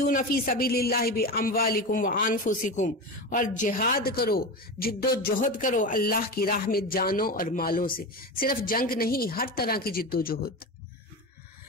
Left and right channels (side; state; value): both; normal; correlation 0.23